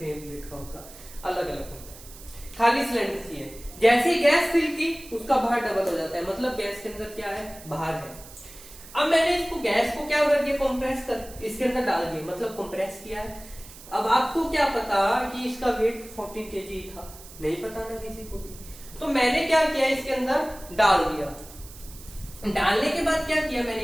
वेट का होगा, अलग अलग होता है। खाली सिलेंडर की है, जैसे ही गैस फिल की उसका बाहर डबल हो जाता है, मतलब गैस के अंदर क्या है, बाहर है। अब मैंने इसको गैस को क्या कर दिया, कंप्रेस कर इसके अंदर डाल दिया, मतलब कंप्रेस किया है। अब आपको क्या पता कि इसका वेट 40 kg था, नहीं पता ना किसी को भी, तो मैंने क्या किया, इसके अंदर डाल दिया। डालने के बाद क्या किया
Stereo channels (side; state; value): right; noise; hiss, 18 dB below the sound